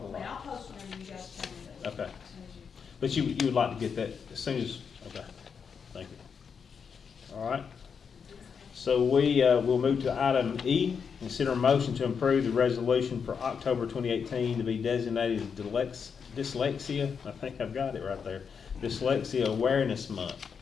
a lot. I'll post whenever you guys tell me that. Okay. As soon as you. But you would like to get that as soon as, okay, thank you. All right. So we'll move to item E, consider a motion to approve the resolution for October 2018 to be designated dyslexia, I think I've got it right there, Dyslexia Awareness Month.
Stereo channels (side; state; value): right; quieter; 6.4 dB